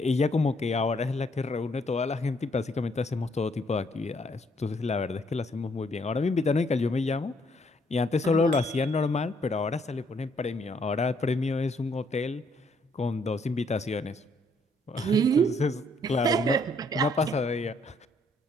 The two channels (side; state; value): both; normal; correlation 0.68